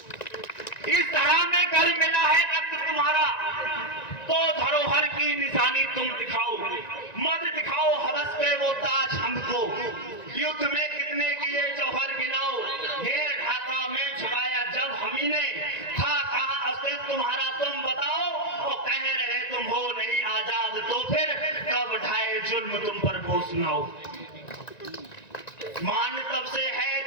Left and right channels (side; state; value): right; late; 1.9 ms